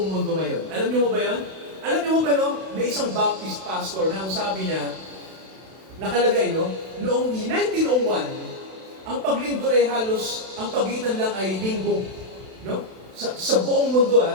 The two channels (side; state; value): left; late; 32 ms